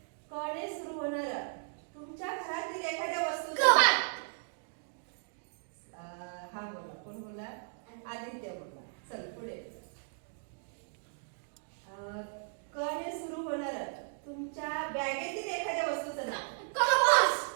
क ने सुरू होणारा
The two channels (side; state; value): left; silent; digital silence